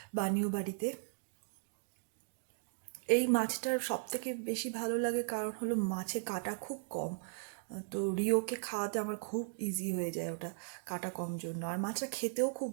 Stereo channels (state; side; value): silent; left; digital silence